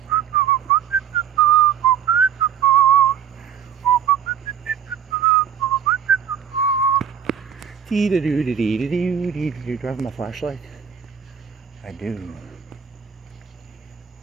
Do you drive my flashlight? I do.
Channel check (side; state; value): left; quieter; 8.7 dB